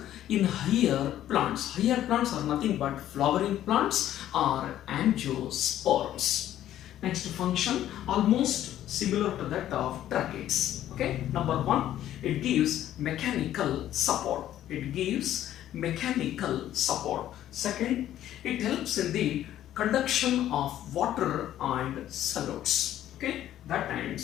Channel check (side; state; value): right; quieter; 12.3 dB